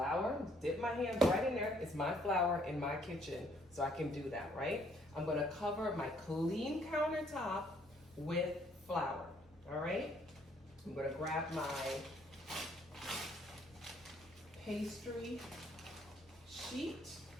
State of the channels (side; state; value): both; normal; correlation 0.65